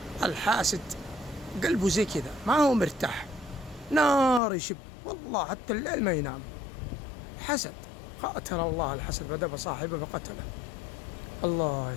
الحاسد قلبه زي كذا ما هو مرتاح، نار يشب والله حتى الليل ما ينام. حسد، قاتل الله الحسد بدأ صاحبه فقتله. الله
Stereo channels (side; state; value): right; drops out; at 4.4 s